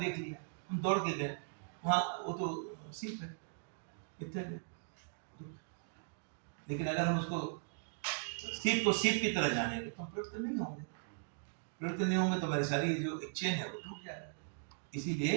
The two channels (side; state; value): left; silent; digital silence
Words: लिया, हम दौड़ के गए वहाँ, वो तो सीप है, इतने। लेकिन अगर हम उसको सीप को सीप की तरह जानेंगे तो हम प्रवृत्त नहीं होंगे। प्रवृत्त नहीं होंगे तो हमारी सारी जो एक चेन है वो टूट जाएगा।